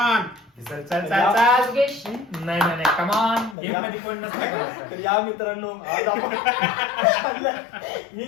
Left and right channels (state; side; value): drops out; right; at 3.6 s